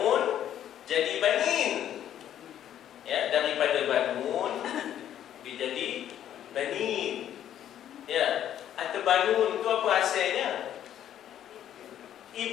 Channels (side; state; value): right; quieter; 10.8 dB